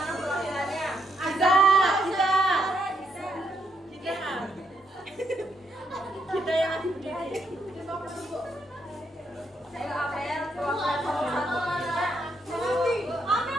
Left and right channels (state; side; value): normal; both; correlation 0.77